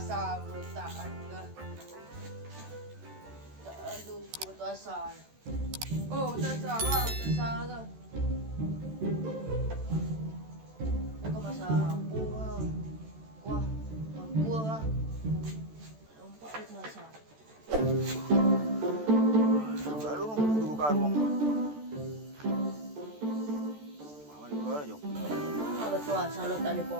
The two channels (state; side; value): late; left; 14 ms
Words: berontakan ke. Tak ada batu asal. Oh, batu asal lah, batu asal ke. Dia kau masak apa lah. Kuah, kuah lah. Nampak batu asal. Lalu nunggu buka ruang. Mana ni kau jom? Batu asal lo